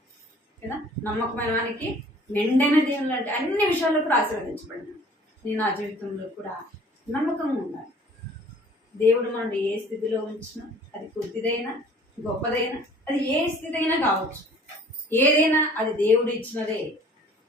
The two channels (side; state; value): both; normal; correlation 0.52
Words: కదా. నమ్మకమైన వానికి మెండైన దేవుళ్ళు అంటే అన్ని విషయాల్లో కూడా ఆశీర్వదించబడినాడు. నేను నా జీవితంలో కూడా నమ్మకంగా ఉండాలి. దేవుడు మనల్ని ఏ స్థితిలో ఉంచినా, అది కొద్దిదైనా గొప్పదైనా, అది ఏ స్థితి అయినా కావచ్చు, ఏదైనా అది దేవుడు ఇచ్చినదే